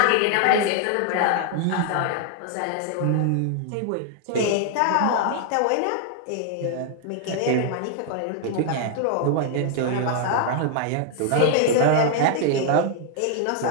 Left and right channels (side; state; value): both; different; correlation 0.00